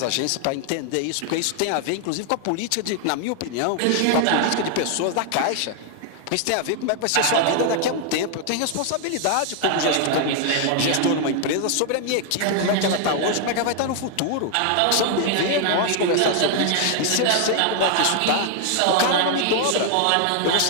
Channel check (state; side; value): different; both; correlation 0.00